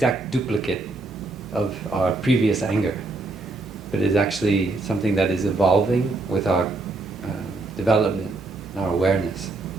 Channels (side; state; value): left; quieter; 3.2 dB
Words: duplicate of our previous anger, but is actually something that is evolving with our development and our awareness.